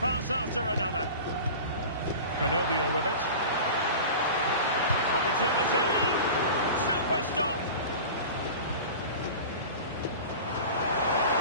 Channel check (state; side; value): inverted; both; correlation -0.35